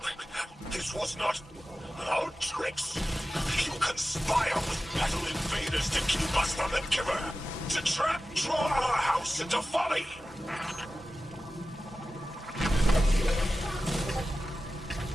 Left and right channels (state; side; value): normal; both; correlation 0.94